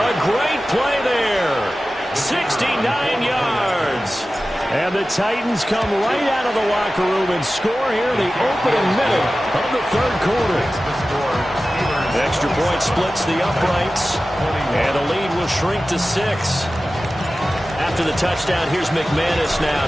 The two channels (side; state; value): both; normal; correlation 0.95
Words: great play there. 69 yards. And the Titans come right out of the locker room and score here in the opening minute of the third quarter. The extra point splits the uprights, and the lead will shrink to 6. After the touchdown, here's McManus now